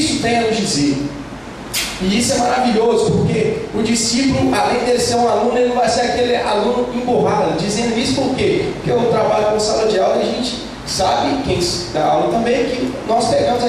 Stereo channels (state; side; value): identical; both; correlation 1.00